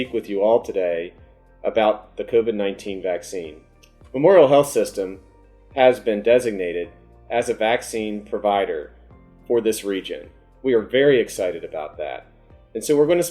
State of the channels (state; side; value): identical; both; correlation 1.00